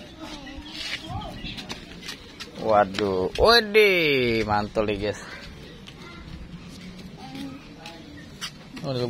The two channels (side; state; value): both; identical; correlation 1.00